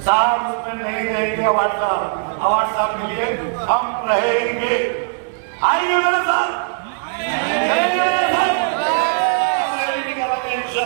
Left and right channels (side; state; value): left; silent; 66 dB below the other